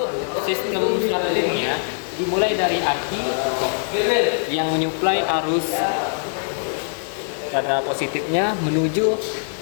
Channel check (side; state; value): right; silent; digital silence